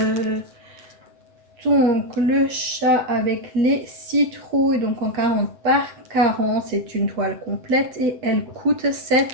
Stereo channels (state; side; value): late; left; 8.4 ms